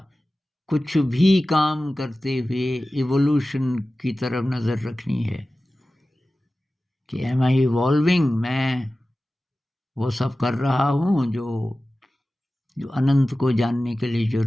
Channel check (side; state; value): both; normal; correlation 0.96